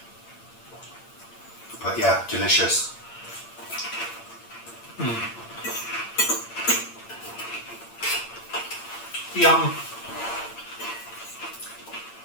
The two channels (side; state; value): right; late; 8.7 ms